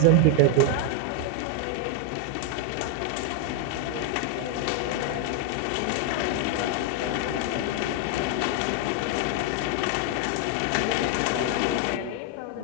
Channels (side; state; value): both; different; correlation 0.00